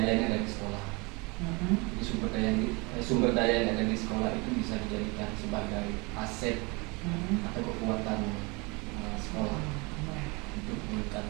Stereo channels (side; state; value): left; quieter; 27.7 dB